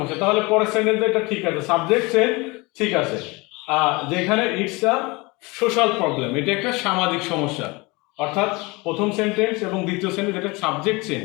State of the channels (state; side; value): quieter; right; 25.1 dB